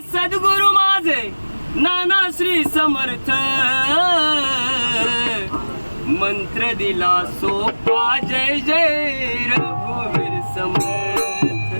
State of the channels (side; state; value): both; inverted; correlation -1.00